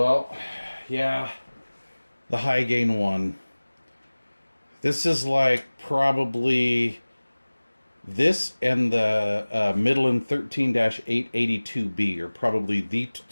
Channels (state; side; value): inverted; both; correlation -1.00